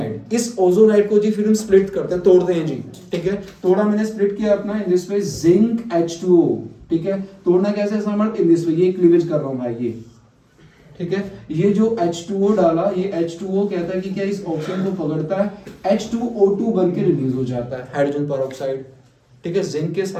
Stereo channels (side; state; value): both; identical; correlation 1.00